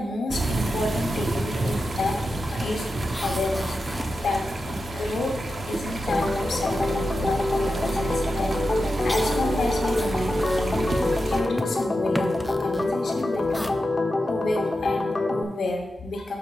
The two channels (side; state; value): both; normal; correlation 0.90